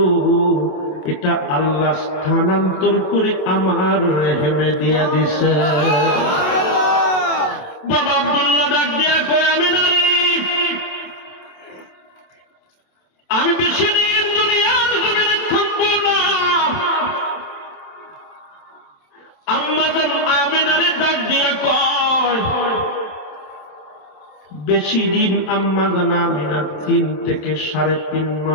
এটা আল্লাহ স্থানান্তর করে আমার রেহেমে দিয়া দিছে। বাবা আব্দুল্লাহ ডাক দিয়া কয়, আমি বেশি দিন দুনিয়ার জমিনে থাকবো না। আম্মা জান আমিনারে ডাক দিয়া কয়, বেশি দিন আম্মা জান আমিনার 3 থেকে 3.5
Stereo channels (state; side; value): late; right; 27 ms